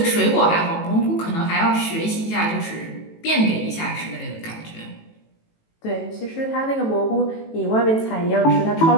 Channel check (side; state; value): right; late; 18 ms